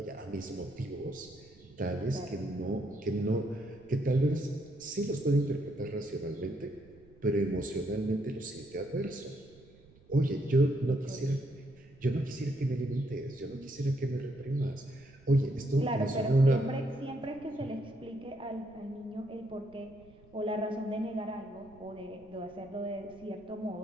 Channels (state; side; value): noise; right; rumble, 25 dB below the sound